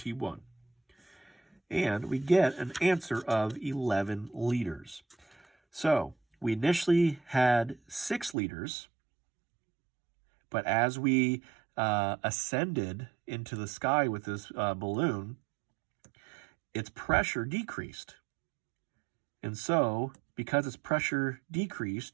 And we get an answer of 11 liters. So we initially had 6 liters, but as we ascended into the sky with this balloon, its pressure decreased. And so, because its pressure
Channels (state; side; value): drops out; left; at 8.3 s